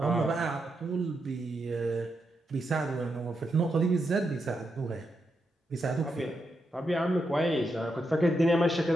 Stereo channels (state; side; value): normal; both; correlation 0.84